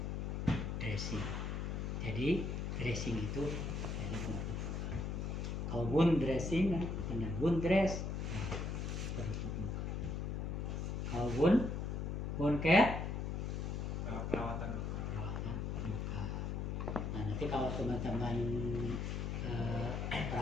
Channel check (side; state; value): left; noise; hum, 2 dB below the sound